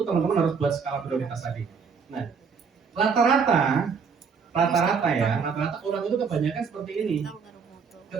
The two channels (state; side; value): quieter; left; 5.8 dB